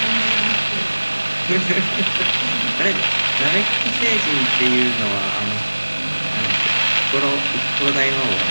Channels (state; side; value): inverted; both; correlation -1.00